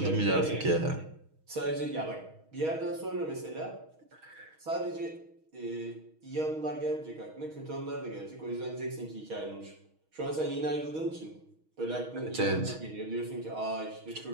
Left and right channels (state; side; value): late; left; 6.3 ms